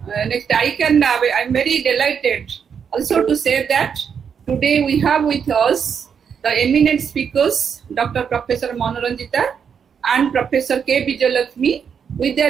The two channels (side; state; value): left; quieter; 7.1 dB